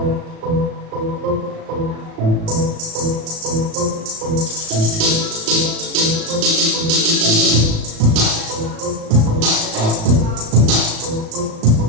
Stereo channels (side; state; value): left; late; 36 ms